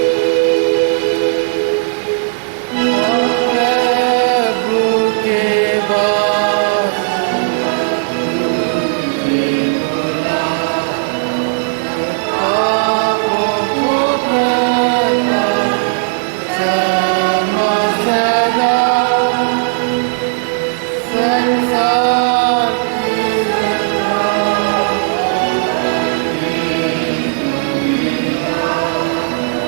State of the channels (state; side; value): silent; left; digital silence